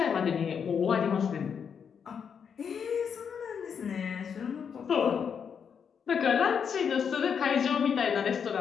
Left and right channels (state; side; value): quieter; right; 7.0 dB